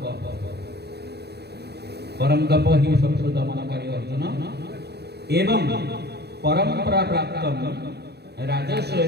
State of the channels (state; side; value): late; left; 0.48 ms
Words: परम तप ही शत्रु दमनकारी अर्जुन एवं परंपरा प्राप्त राजस्व